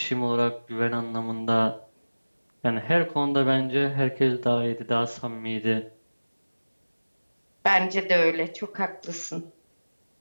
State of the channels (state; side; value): inverted; both; correlation -1.00